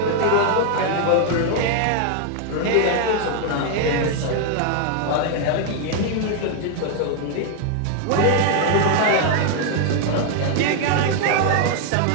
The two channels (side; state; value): both; different; correlation 0.00